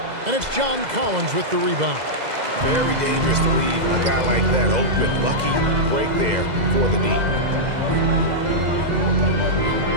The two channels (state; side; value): late; left; 2.0 ms